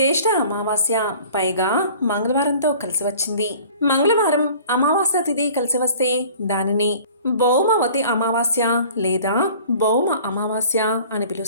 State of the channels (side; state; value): both; inverted; correlation -0.48